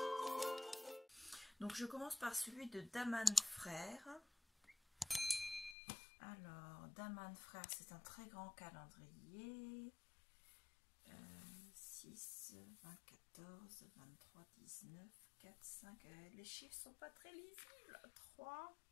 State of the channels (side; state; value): right; drops out; at 5.8 s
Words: Donc je commence par celui de Daman Frères. Alors, Daman Frères, c'est un très grand calendrier. 6, 20, 14, 23, 19, 4, 5. Les chiffres sont pas très lisibles. 3.